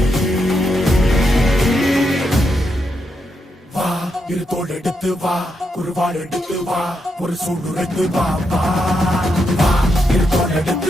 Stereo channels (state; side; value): normal; both; correlation 0.82